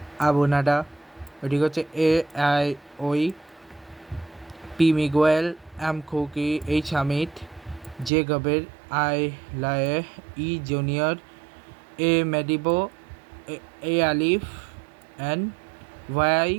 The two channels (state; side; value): drops out; left; at 8.1 s